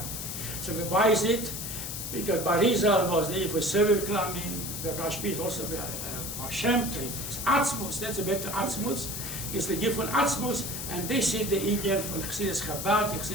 So why is it? Because Barizal was there for Seviv Klamim, the Rashbi is also Baal Shem Tov. It's Atzmuz, that's a better Atzmuz. It's the gift von Atzmuz, and they see the Indian from chassidus Chabad,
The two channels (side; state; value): left; noise; hiss, 6 dB below the sound